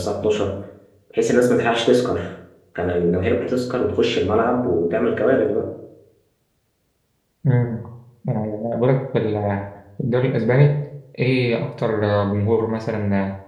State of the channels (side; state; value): both; identical; correlation 1.00